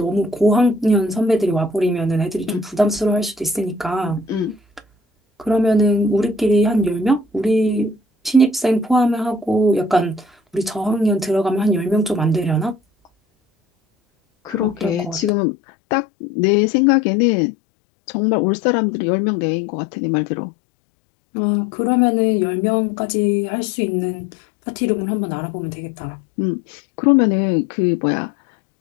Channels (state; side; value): drops out; right; at 15.3 s